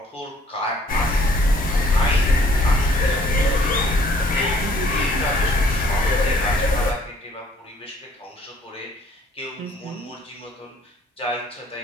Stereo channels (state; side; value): normal; both; correlation 0.61